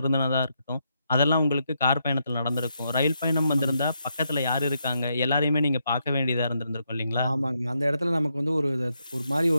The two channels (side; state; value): both; inverted; correlation -0.80